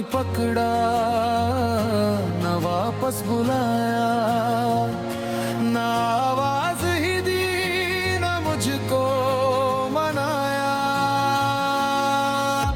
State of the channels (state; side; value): identical; both; correlation 1.00